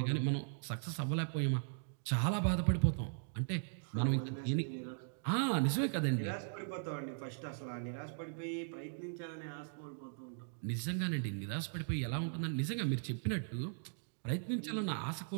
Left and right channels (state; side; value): silent; left; digital silence